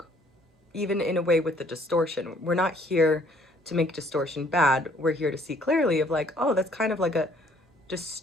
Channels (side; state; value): both; normal; correlation 0.61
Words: even in a way, with the distortion. We're not here to make distortion bad. We're here to see clearly of like, oh, that's kind of like a